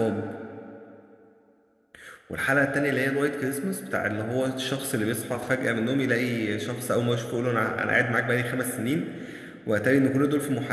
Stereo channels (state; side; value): identical; both; correlation 1.00